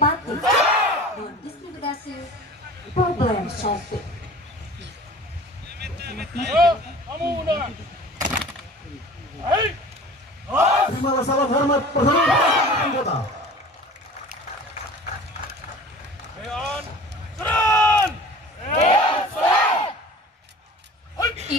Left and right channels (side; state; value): both; normal; correlation 0.42